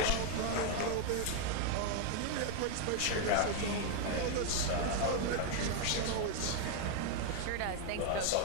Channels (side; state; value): both; different; correlation 0.01